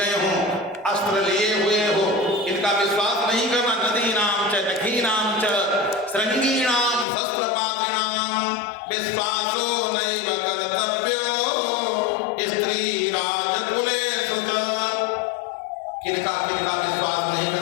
हो, अस्त्र लिए हुए हो, इनका विश्वास नहीं करना। नदीनाम च नखीनाम च श्रृंगीणाम शस्त्रपात्रिणाम विश्वासो नैव कर्तव्यो स्त्री राजकुलेषु च। किनका विश्वास नहीं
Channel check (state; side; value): drops out; right; at 7.1 s